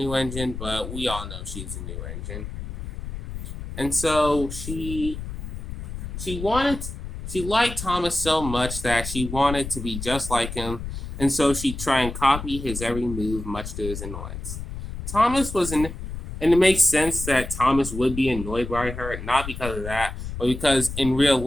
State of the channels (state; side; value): noise; left; rumble, 8 dB below the sound